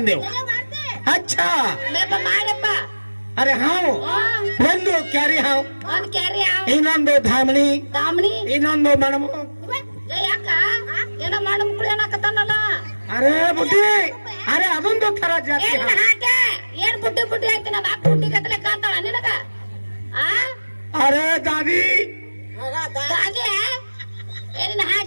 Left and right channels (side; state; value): both; inverted; correlation -1.00